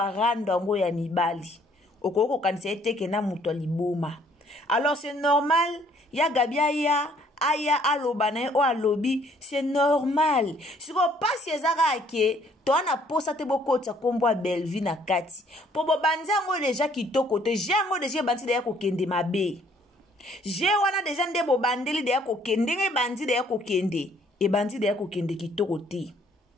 ngo ya mibali. Okoko kanisa eteke na muto liboma. Alors c'est normal, ya Gabi aya alobana o alobi, c'est normal. Si ko pasi ezaka ke to ana posa te bokota kombo Belvi na kati. Po bo banza ngo deja kitoko te, jango deja banzi de ya kokende mabe. Je wana deja nde bo bandeli de ya kokende nge banzi de ya kokende. E banzi de ya kokende kitoko te.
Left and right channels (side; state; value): both; normal; correlation 0.62